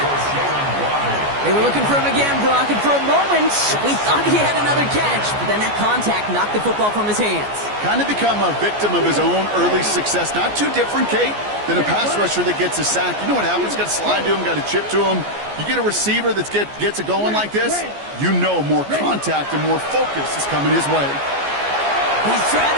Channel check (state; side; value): late; left; 14 ms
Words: They were looking for him again, Brock, and for a moment, we thought he had another catch. But then that contact knocked the football from his hands. Kind of become a victim of his own early success. Not too different, Kate, than a pass rusher that gets a sack. You know what happens? Got to slide to him, got to chip to him. You get a receiver that gets it going like this, you know more contact and more focus is coming his way. He's trying